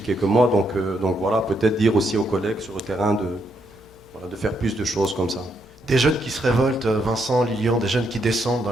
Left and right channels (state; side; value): noise; left; hum, 25 dB below the sound